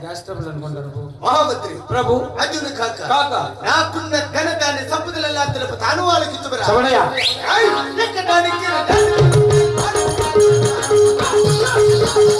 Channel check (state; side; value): identical; both; correlation 1.00